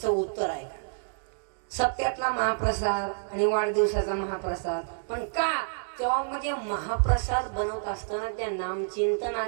उत्तर आहे सप्त्यातला महाप्रसाद आणि वाढदिवसाचा महाप्रसाद. पण का, तेव्हा म्हणजे महाप्रसाद बनवत असताना त्या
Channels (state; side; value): silent; left; digital silence